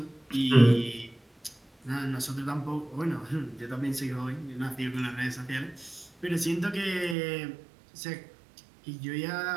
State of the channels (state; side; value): drops out; left; at 7.2 s